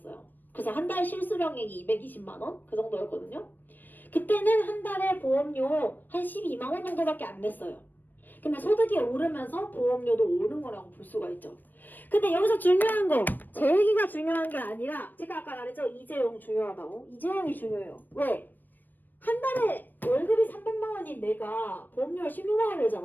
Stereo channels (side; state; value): right; late; 0.090 ms